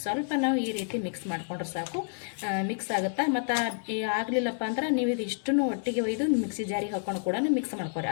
ಸ್ವಲ್ಪ ನಾವು ಈ ರೀತಿ ಮಿಕ್ಸ್ ಮಾಡ್ಕೊಂಡ್ರೆ ಸಾಕು, ಮಿಕ್ಸ್ ಆಗುತ್ತಾ. ಮತ್ತು ಆಗಲಿಲ್ಲಪ್ಪ ಅಂದ್ರೆ ನೀವು ಇದು ಇಷ್ಟನ್ನು ಒಟ್ಟಿಗೆ ಒಯ್ದು ಮಿಕ್ಸಿ ಜಾರಿಗೆ ಹಾಕೊಂಡು ಕೂಡ ಮಿಕ್ಸ್ ಮಾಡ್ಕೊರಿ,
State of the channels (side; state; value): right; silent; digital silence